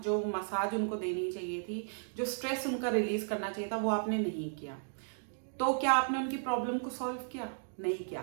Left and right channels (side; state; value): left; silent; digital silence